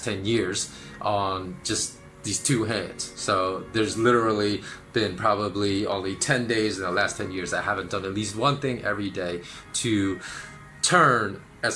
years on just these two hands. So there's literally been probably only 10 days in the last 10 years that I haven't done at least one thing every day to turn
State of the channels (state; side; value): identical; both; correlation 1.00